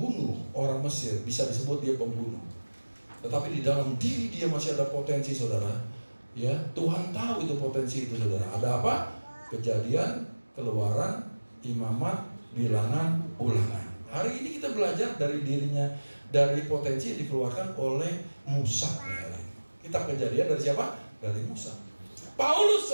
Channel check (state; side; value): inverted; both; correlation -1.00